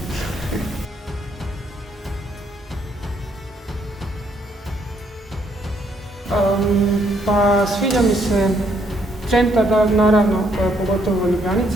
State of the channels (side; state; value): both; normal; correlation 0.71